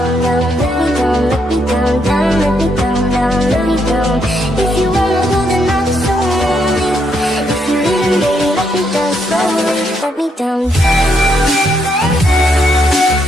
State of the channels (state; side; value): normal; both; correlation 0.76